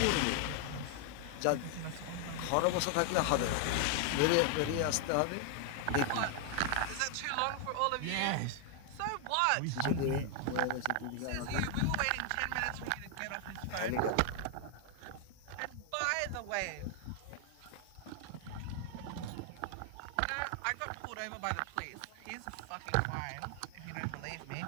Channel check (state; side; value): different; both; correlation 0.00